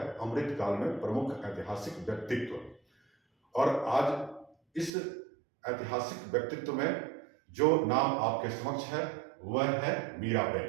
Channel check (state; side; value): drops out; left; at 4.9 s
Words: अमृतकाल में प्रमुख ऐतिहासिक व्यक्तित्व। और आज इस ऐतिहासिक व्यक्तित्व में जो नाम आपके समक्ष है वह है